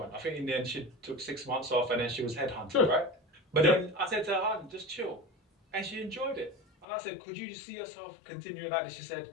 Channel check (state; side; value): drops out; right; at 6.9 s